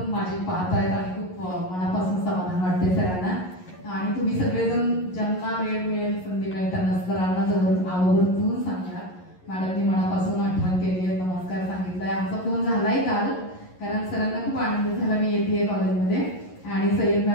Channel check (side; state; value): right; late; 11 ms